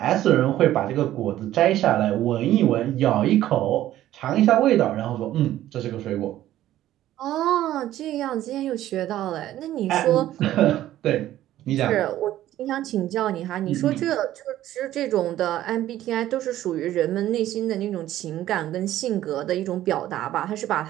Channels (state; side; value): quieter; left; 13.5 dB